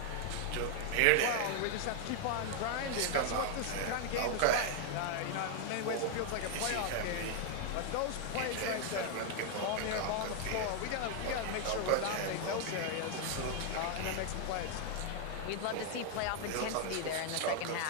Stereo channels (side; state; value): both; different; correlation 0.00